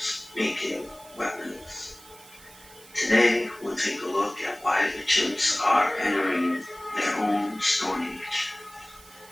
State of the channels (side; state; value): right; noise; hiss, 22 dB below the sound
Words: making weapons. Today, we'll take a look at why the chimps are entering their own stone age.